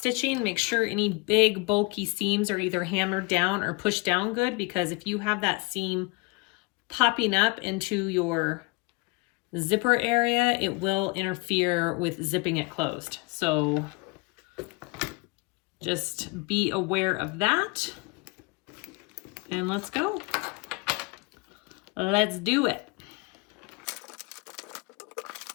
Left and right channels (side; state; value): right; quieter; 27.5 dB